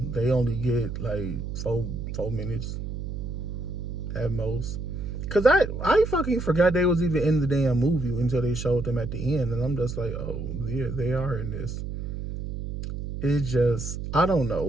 They only get like 4 minutes at most. Cause I fucking forgot they was even in the damn movie until they showed them at the end, and I'm just like, oh yeah, they are in this. It just, I don't know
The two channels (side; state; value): right; noise; hum, 5 dB below the sound